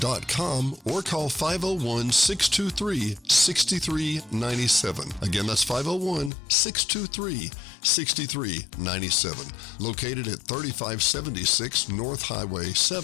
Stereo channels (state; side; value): drops out; right; at 6.3 s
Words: or call 501-623-6397. Again, that's 501-623-6397. Located at 3576 North Highway